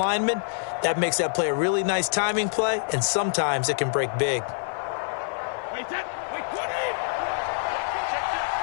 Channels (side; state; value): right; silent; digital silence